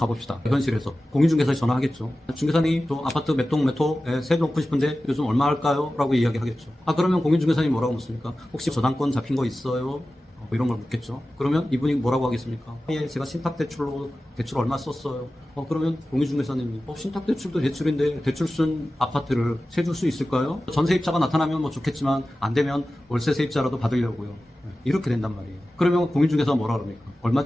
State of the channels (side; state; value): both; normal; correlation 0.95